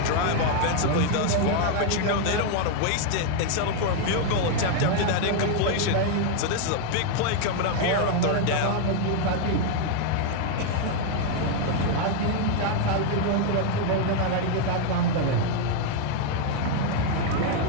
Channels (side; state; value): both; different; correlation 0.00